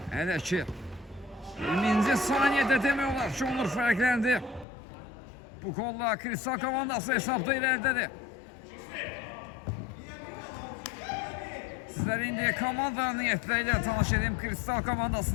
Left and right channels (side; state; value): right; drops out; at 4.7 s